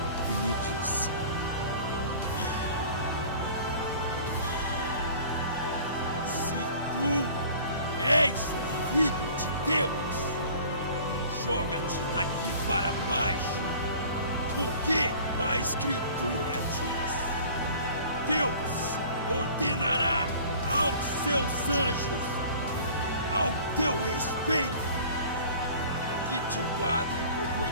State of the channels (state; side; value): inverted; both; correlation -0.46